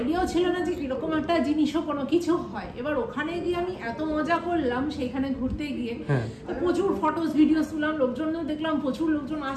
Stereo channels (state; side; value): identical; both; correlation 1.00